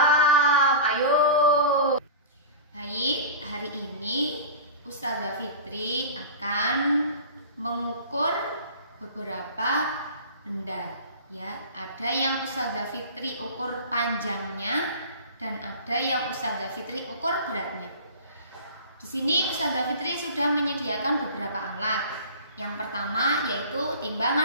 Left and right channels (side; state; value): both; inverted; correlation -0.35